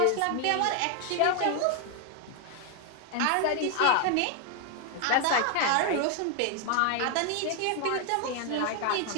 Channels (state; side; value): different; both; correlation 0.01